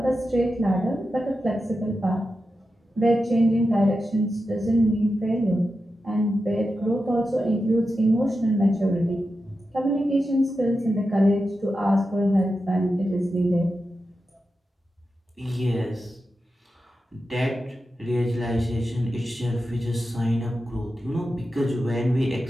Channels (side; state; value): both; normal; correlation 0.90